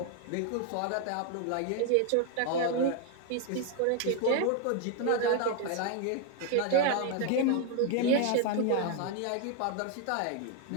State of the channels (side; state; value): both; different; correlation 0.01